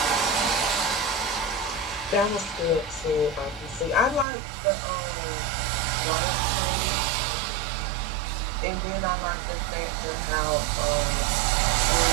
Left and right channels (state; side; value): drops out; left; at 4.2 s